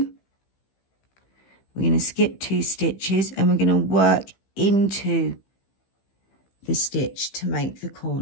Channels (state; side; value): late; right; 15 ms